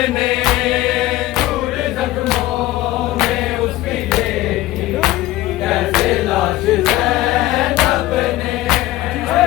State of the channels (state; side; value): quieter; right; 16.4 dB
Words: ने चूर जख्मों में उसकी देखी, कैसे लाश ज़ैनब ने